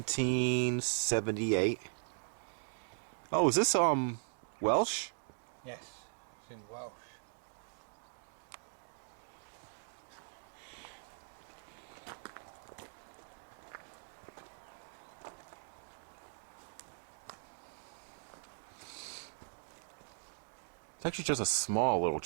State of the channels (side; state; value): left; silent; digital silence